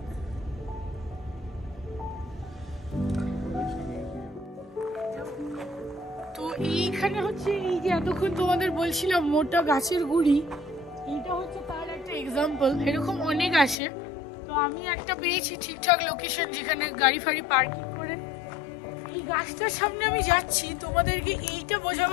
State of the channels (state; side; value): drops out; right; at 13.8 s